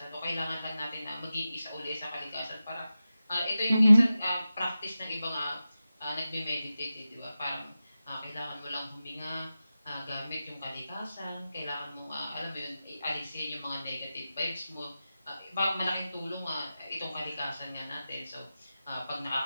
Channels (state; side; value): inverted; both; correlation -0.94